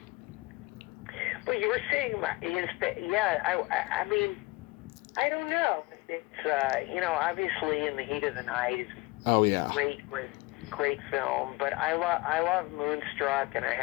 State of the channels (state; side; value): quieter; right; 22.6 dB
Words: But you were seeing I mean, I don't know. It's obviously In the Heat of the Night is great film. But I love Moonstruck, and I